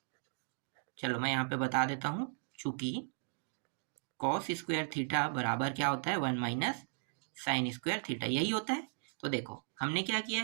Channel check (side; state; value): left; silent; digital silence